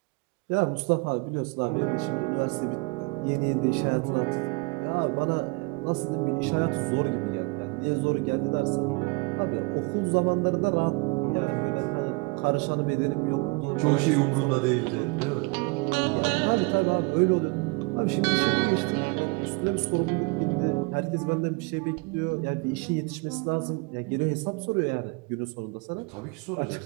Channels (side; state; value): left; quieter; 28.6 dB